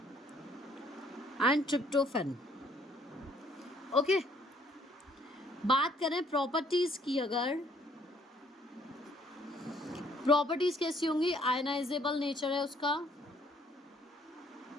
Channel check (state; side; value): normal; both; correlation 0.63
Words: and tryptophan. Okay, बात करें प्रॉपर्टीज की, अगर प्रॉपर्टीज कैसी होंगी, आयनाइजेबल नेचर है उसका,